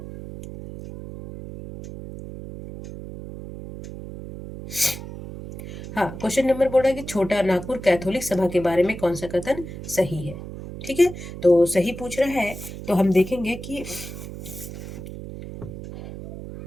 हाँ, क्वेश्चन नंबर बोल रहा है कि छोटा नागपुर कैथोलिक सभा के बारे में कौन सा कथन सही है। ठीक है, तो सही पूछ रहा है, तो हम देखेंगे कि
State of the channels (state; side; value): noise; right; hum, 11 dB below the sound